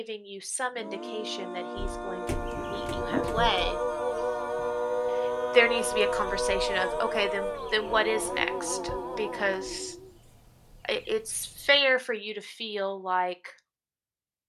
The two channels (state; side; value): identical; both; correlation 1.00